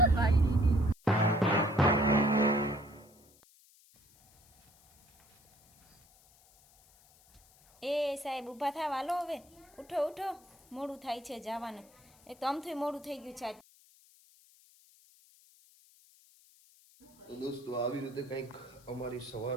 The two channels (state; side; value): noise; left; hiss, 28 dB below the sound